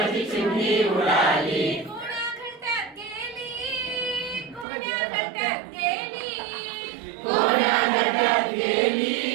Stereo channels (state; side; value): drops out; left; at 4.7 s